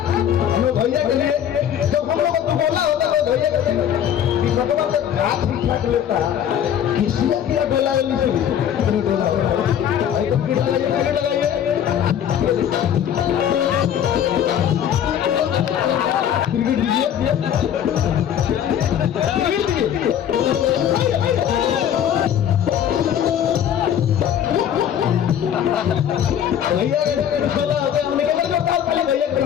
भैया के लिए। जब हम लोग को बोला होता तो भैया के ठीक ठाक लेता किसी का डोला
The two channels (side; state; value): right; quieter; 9.6 dB